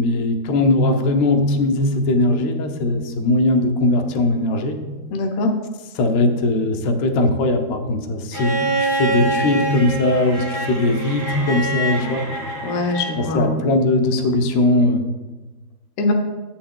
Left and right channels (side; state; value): right; late; 13 ms